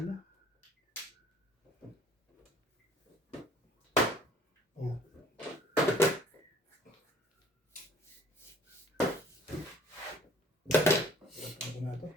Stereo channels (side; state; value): both; normal; correlation 0.54